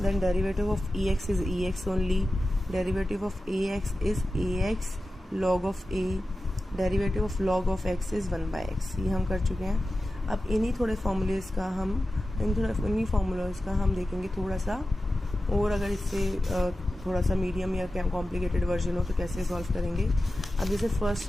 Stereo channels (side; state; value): both; normal; correlation 0.93